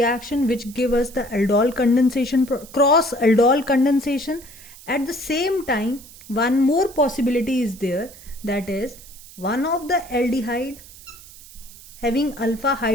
which give us the aldol condensation, cross aldol condensation. At the same time, one more possibility is there, that is one of the aldehyde having alpha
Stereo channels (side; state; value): right; noise; hiss, 19 dB below the sound